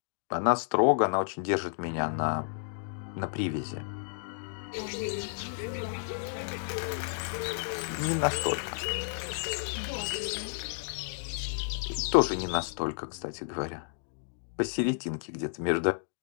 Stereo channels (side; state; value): right; silent; digital silence